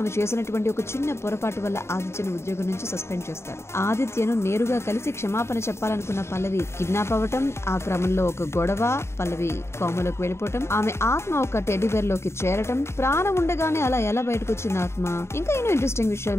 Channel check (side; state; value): right; late; 0.13 ms